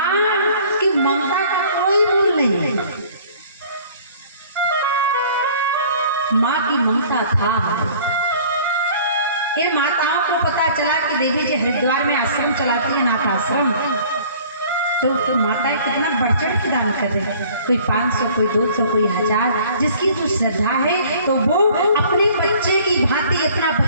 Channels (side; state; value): both; inverted; correlation -0.52